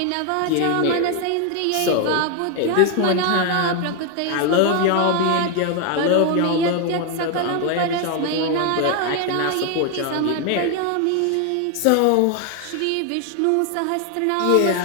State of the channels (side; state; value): both; different; correlation 0.01